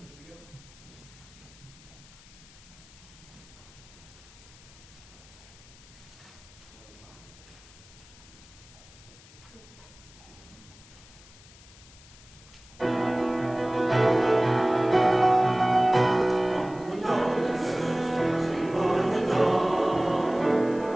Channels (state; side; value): noise; left; hiss, 23 dB below the sound